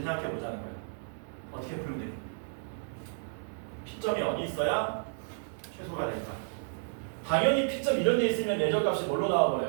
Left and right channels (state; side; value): silent; left; 57 dB below the other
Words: 생각해 보자는 거야. 어떻게 풀면 돼? P점이 어디 있어야 최소가 될까? 당연히 P점 이런 데 있으면 내적값이 뭘로